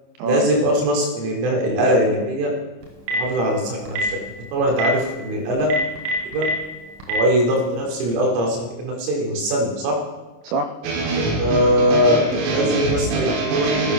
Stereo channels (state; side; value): late; left; 25 ms